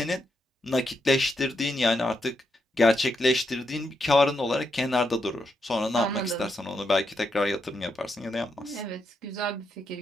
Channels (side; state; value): both; normal; correlation 0.81